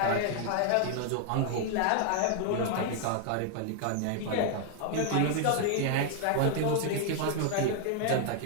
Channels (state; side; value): different; both; correlation 0.00